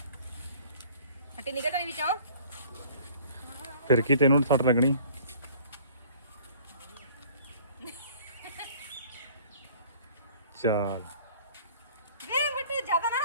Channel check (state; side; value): inverted; both; correlation -0.51